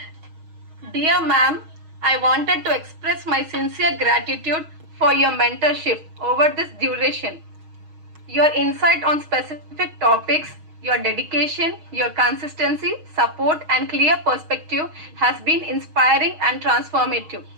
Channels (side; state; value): left; late; 6.4 ms